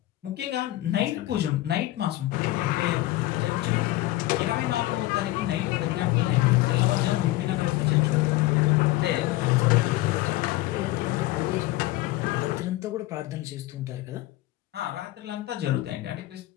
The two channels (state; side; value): quieter; right; 17.2 dB